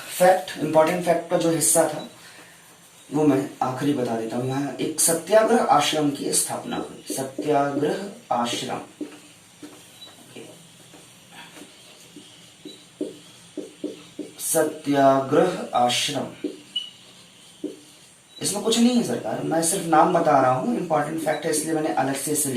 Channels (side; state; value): both; identical; correlation 1.00